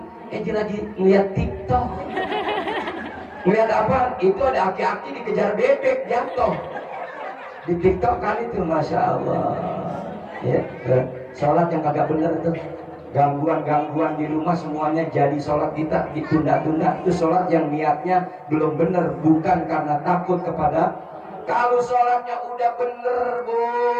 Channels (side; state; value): both; identical; correlation 1.00